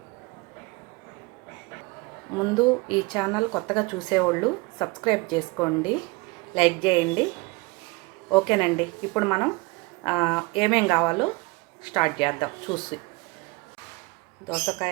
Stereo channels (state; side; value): quieter; left; 24.8 dB